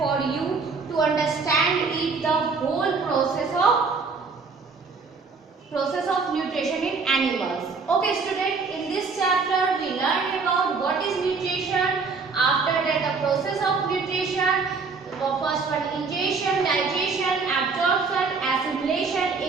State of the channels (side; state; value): left; quieter; 4.6 dB